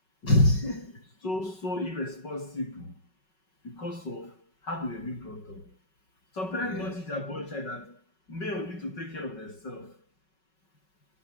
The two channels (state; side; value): late; right; 5.4 ms